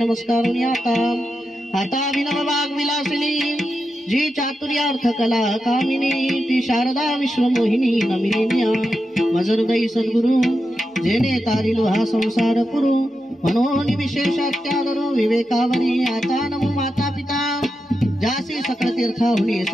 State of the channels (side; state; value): both; normal; correlation 0.88